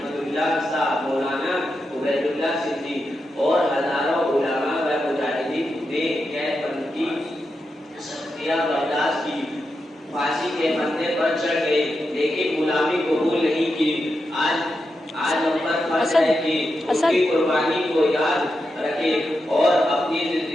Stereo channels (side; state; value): both; normal; correlation 0.87